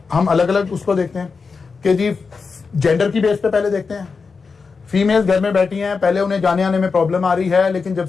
हम अलग अलग उसको देखते हैं कि जी जेंडर की बेस पे पहले देखते हैं, फीमेल्स घर में बैठी हैं, पहले उन्हें जाने आने में प्रॉब्लम आ रही है, लेकिन जब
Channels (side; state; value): right; quieter; 4.9 dB